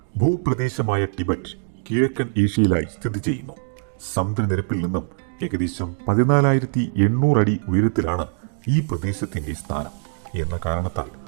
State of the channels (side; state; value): left; silent; digital silence